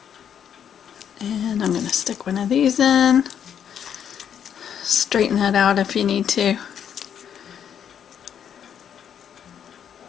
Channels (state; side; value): quieter; right; 8.7 dB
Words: And I'm going to stick one of these in. Straighten that out if you need to.